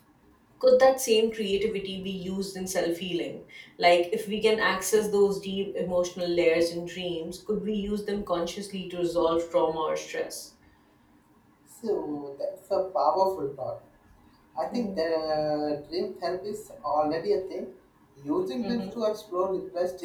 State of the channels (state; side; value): identical; both; correlation 1.00